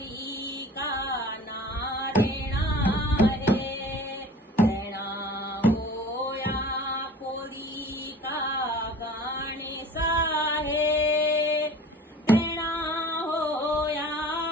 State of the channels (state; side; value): normal; both; correlation 0.43